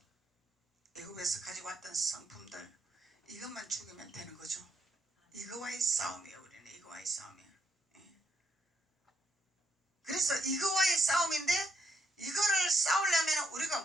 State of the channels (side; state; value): both; normal; correlation 0.76